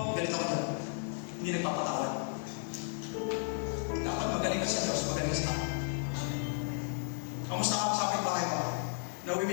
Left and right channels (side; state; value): right; silent; digital silence